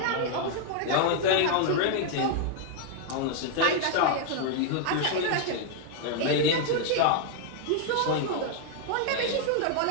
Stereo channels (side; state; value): both; different; correlation 0.00